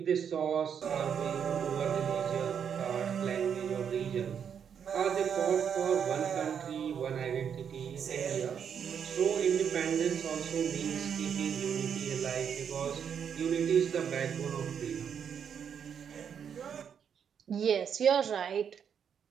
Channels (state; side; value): quieter; left; 7.7 dB